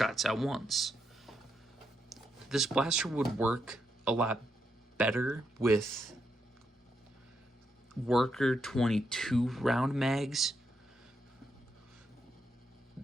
at once. This blaster would work a lot better with worker 22 round mags.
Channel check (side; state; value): both; normal; correlation 0.81